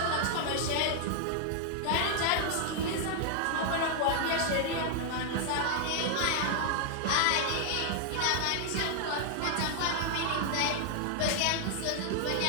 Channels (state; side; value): different; both; correlation 0.00